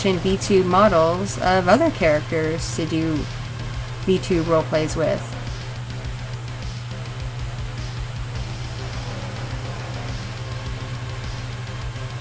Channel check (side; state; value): both; identical; correlation 1.00